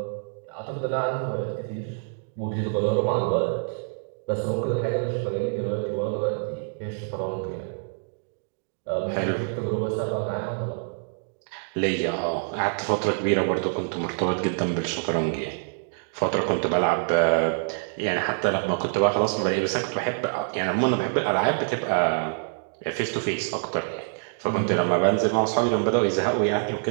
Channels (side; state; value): left; silent; digital silence